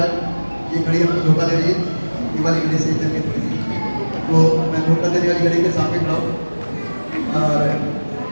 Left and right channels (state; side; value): inverted; both; correlation -1.00